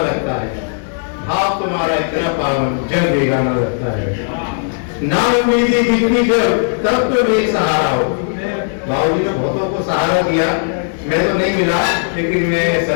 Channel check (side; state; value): right; silent; 63 dB below the other